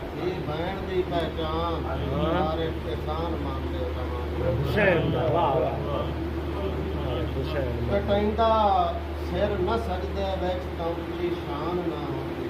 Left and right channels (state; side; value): identical; both; correlation 1.00